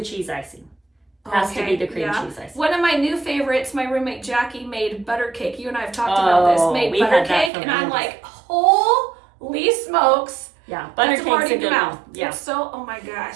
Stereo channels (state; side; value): drops out; left; at 7.5 s